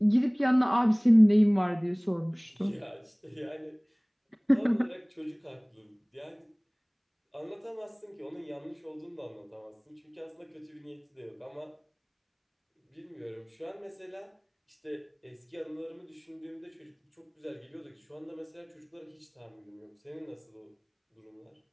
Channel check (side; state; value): both; identical; correlation 1.00